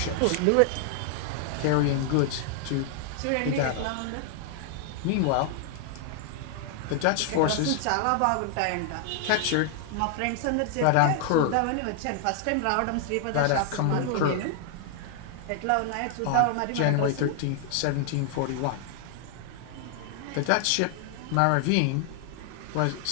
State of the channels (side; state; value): both; different; correlation 0.00